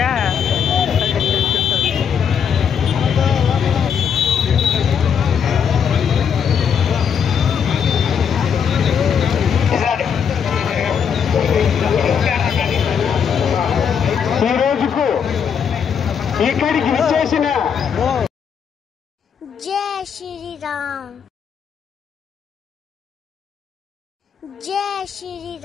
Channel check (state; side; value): quieter; right; 7.4 dB